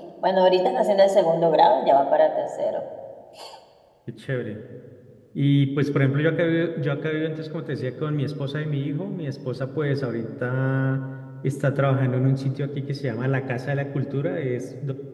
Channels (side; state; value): both; identical; correlation 1.00